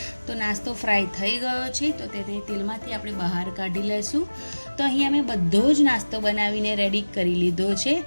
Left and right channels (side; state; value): both; inverted; correlation -1.00